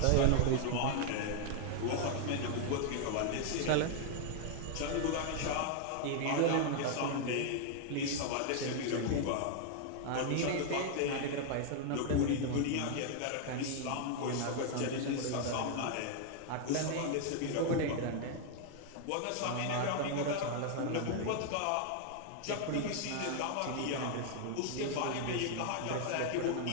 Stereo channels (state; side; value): different; both; correlation 0.00